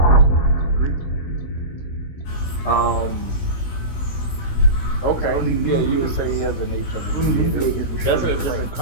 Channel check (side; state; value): right; late; 16 ms